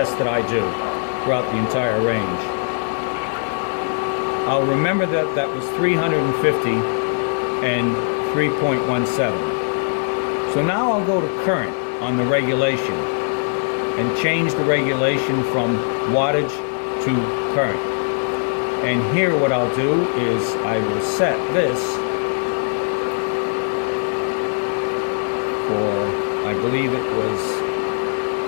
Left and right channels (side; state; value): right; silent; 65 dB below the other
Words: that I do throughout the entire range. I'll remember that that was 350 and 3.17. So now I'll go to current on the regulation and change the regulation from wattage to current. And here what I'll do is I will set this for, I believe it was